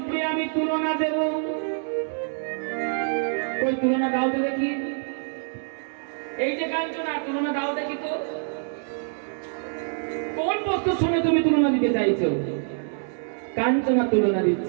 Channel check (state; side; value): silent; left; digital silence